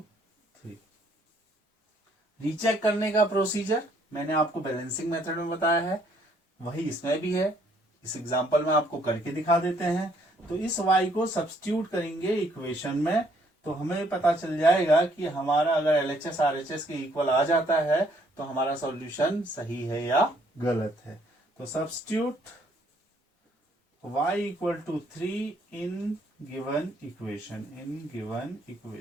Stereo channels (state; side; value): normal; both; correlation 0.66